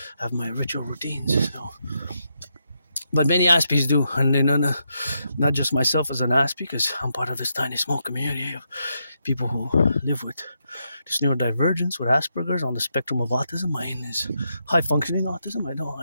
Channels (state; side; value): inverted; both; correlation -0.81